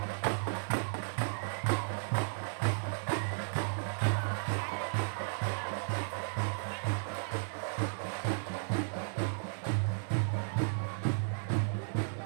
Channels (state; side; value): silent; left; 55 dB below the other